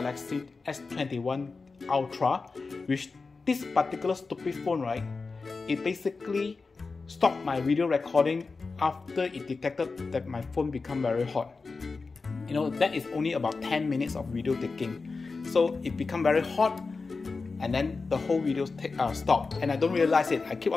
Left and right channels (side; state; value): right; quieter; 4.2 dB